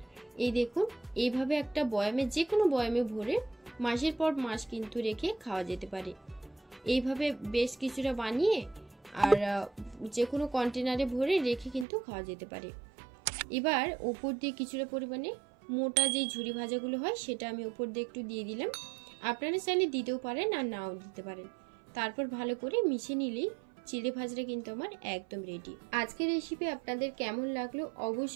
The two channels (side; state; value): left; drops out; at 11.9 s